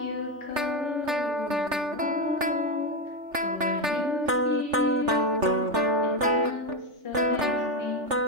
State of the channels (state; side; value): late; left; 3.4 ms